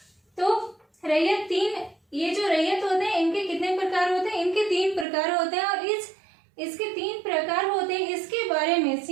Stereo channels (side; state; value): left; drops out; at 5.1 s